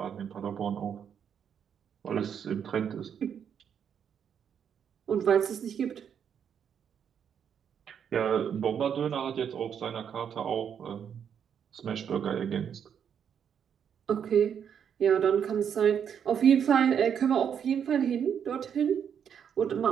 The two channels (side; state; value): left; quieter; 8.0 dB